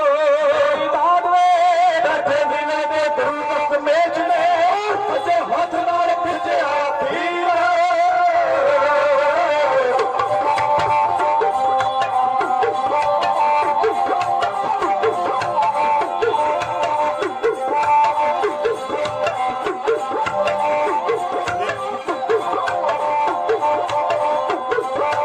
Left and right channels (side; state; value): both; identical; correlation 1.00